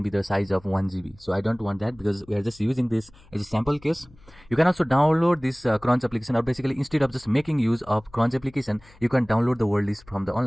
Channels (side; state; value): left; noise; hum, 26 dB below the sound